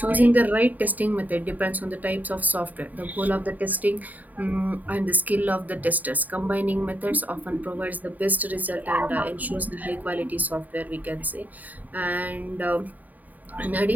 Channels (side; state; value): left; late; 0.080 ms